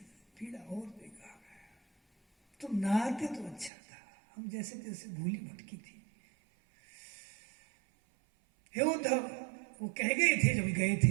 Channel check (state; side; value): drops out; left; at 3.7 s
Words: पीड़ा और देगा। तुम ना आते तो अच्छा था, हम जैसे जैसे भूली भटकी थी हे उद्धव, वो कह गए थे जब गए